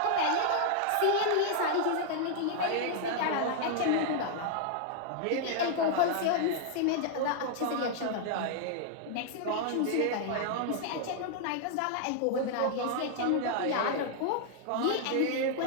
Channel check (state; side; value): different; both; correlation 0.00